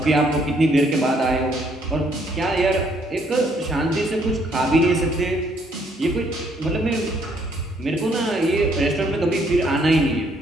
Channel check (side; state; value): both; normal; correlation 0.67